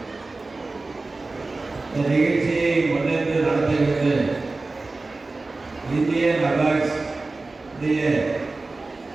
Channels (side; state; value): left; quieter; 3.4 dB